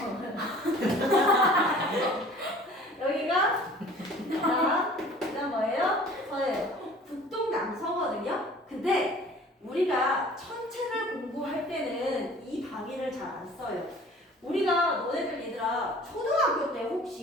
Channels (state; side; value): normal; both; correlation 0.48